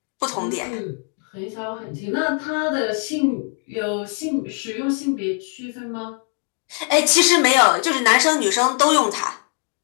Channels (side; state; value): right; quieter; 39.0 dB